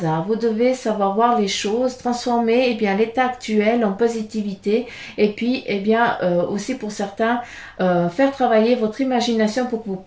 Vous devez savoir voir les choses, transformer eh bien, l'état actuel en positivité et puis eh bien, aussi pour certains, faire travailler votre imagination pour que vous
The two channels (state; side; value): identical; both; correlation 1.00